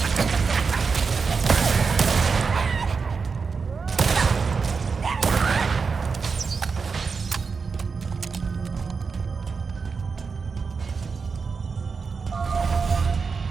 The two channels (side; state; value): left; quieter; 5.1 dB